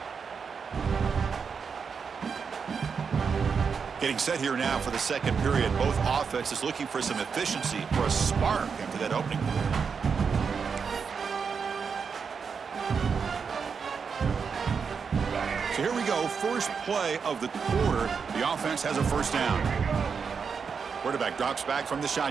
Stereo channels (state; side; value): quieter; left; 5.9 dB